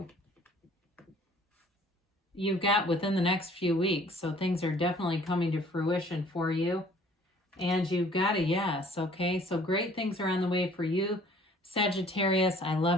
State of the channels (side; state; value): both; normal; correlation 0.55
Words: You've got within the next few weeks. So things are definitely coming to fruition for you. And you've got a yes, okay? So great things are on the way for you, Sagittarius. I